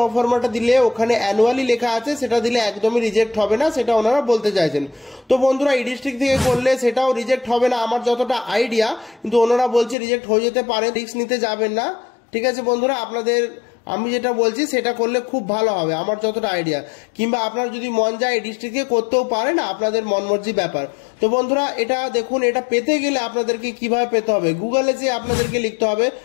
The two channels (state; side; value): drops out; right; at 10.0 s